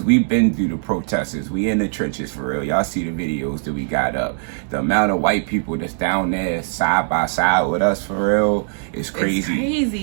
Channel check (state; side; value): silent; left; 59 dB below the other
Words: we've been through the protesters, we in the trenches for real. Y'all see the videos that we got up. The amount of white people that's down there side by side with us for real is crazy. It's